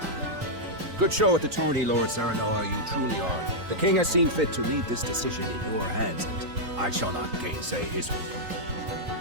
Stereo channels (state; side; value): late; left; 3.9 ms